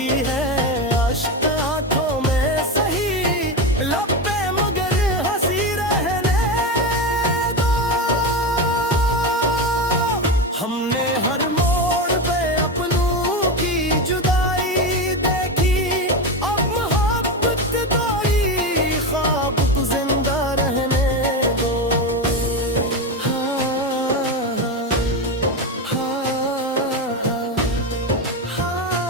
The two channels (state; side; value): normal; both; correlation 0.17